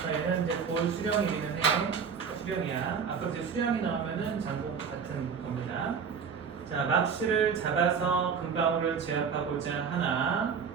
얘는 이제 고을 수령이기는 해. 수령이야. 아까 이제 수령이 나오면은 장공 같은 겁니다. 자, 막시를 잡아서 금방울을 제압하고자 하나.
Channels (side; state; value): left; quieter; 6.4 dB